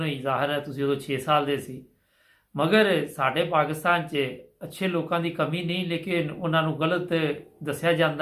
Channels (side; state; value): both; identical; correlation 1.00